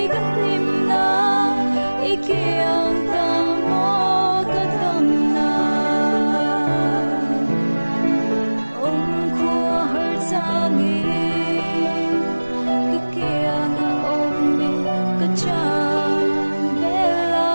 ka lim na ikyang ta mo ka tam na khu har changi ka kyang a mi ka cha bela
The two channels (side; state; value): both; inverted; correlation -1.00